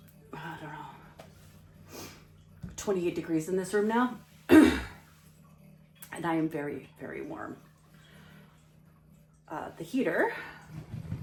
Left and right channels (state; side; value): identical; both; correlation 1.00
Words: I don't know, 28 degrees in this room now. And I am very, very warm. The heater